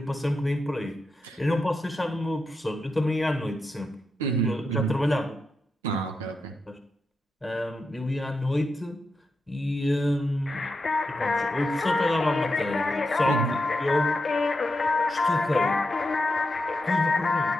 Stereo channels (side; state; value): both; normal; correlation 0.87